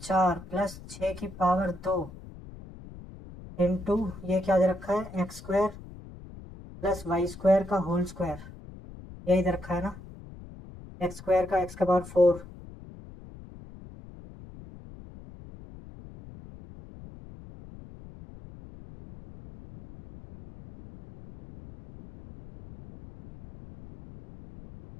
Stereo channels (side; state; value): left; noise; rumble, 17 dB below the sound